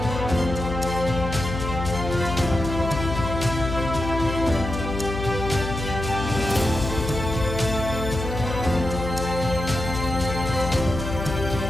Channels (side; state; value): left; noise; hum, 5 dB below the sound